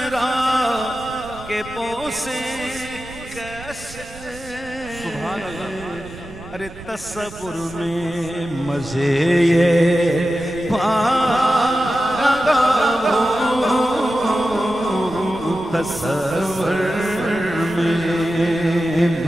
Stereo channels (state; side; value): noise; right; rumble, 16 dB below the sound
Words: کے بوسے کیسے سبحان اللہ ارے تصور میں مزے یہ پا رہا ہوں تصور میں